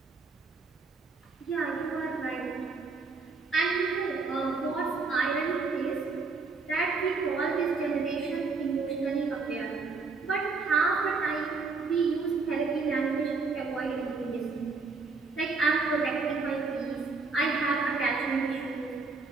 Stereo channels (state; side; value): quieter; left; 4.3 dB